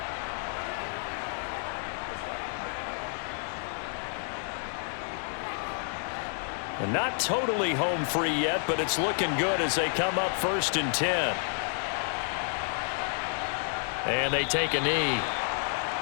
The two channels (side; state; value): right; silent; 58 dB below the other